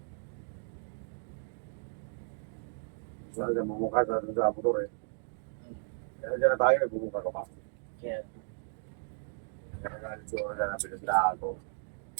Saan siya mamukha sa motor eh. Kaya dyan na tayo, nagbubuka ka pa. Kaya, Kaya nagalit siguro na napinaglaan ko.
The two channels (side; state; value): left; silent; digital silence